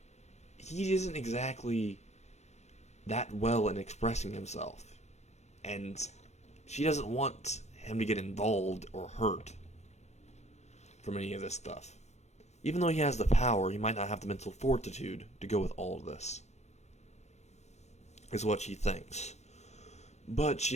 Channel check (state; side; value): late; right; 0.32 ms